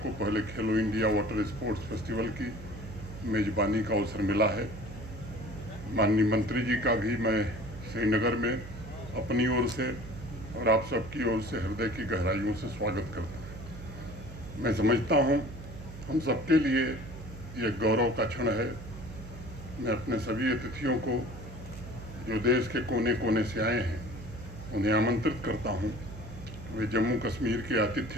पहले खेलो इंडिया वाटर स्पोर्ट्स फेस्टिवल की मेजबानी का अवसर मिला है। माननीय मंत्री जी का भी मैं श्रीनगर में अपनी ओर से और आप सबकी ओर से हृदय की गहराइयों से स्वागत करता हूँ। मैं समझता हूँ हम सबके लिए ये गौरव का क्षण है। मैं अपने सभी अतिथियों को जो देश के कोने कोने से आए हैं उन्हें आमंत्रित करता हूँ, वे जम्मू कश्मीर के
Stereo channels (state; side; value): noise; right; hum, 12 dB below the sound